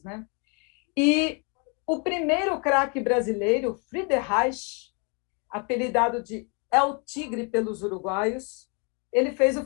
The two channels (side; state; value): right; quieter; 35.4 dB